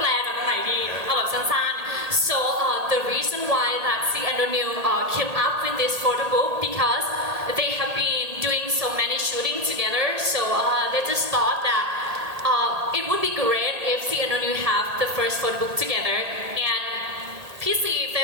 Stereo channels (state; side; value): late; left; 1.8 ms